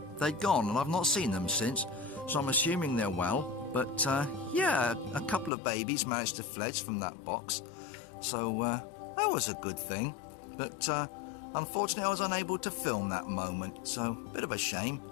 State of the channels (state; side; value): drops out; right; at 5.5 s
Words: they'd gone, and I've not seen them since. so I'm assuming they're well. But yeah, a couple of babies managed to fledge from that box, so that was a good thing. But unfortunately I was unable to film that moment, so a bit of a shame,